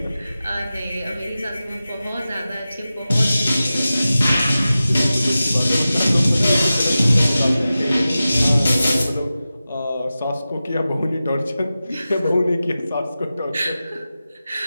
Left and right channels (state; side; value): inverted; both; correlation -0.94